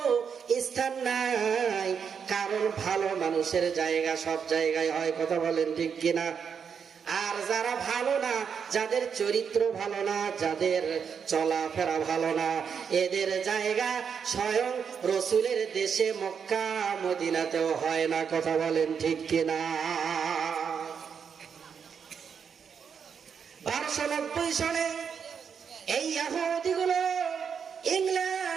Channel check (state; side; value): quieter; left; 6.8 dB